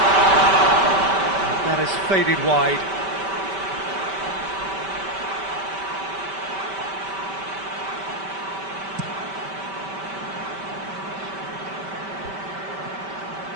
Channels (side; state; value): left; late; 5.2 ms